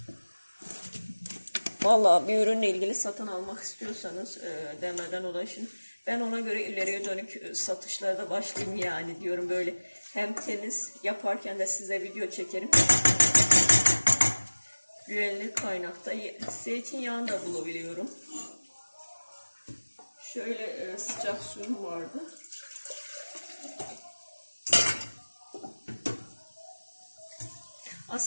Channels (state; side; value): inverted; both; correlation -1.00